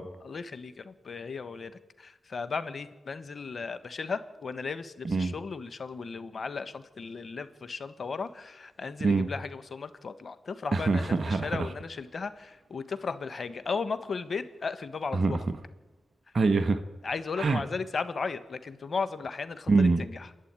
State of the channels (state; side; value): normal; both; correlation 0.88